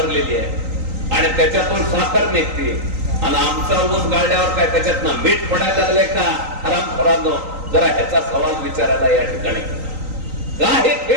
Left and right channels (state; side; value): late; left; 3.9 ms